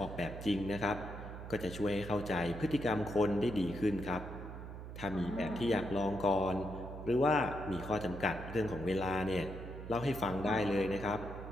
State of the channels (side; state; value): right; noise; hum, 10 dB below the sound